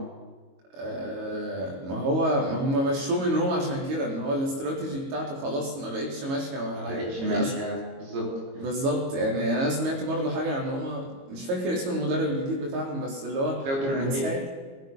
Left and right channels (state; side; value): late; left; 22 ms